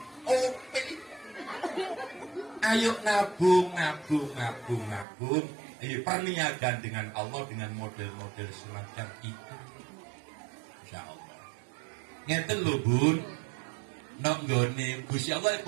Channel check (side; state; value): left; drops out; at 5.1 s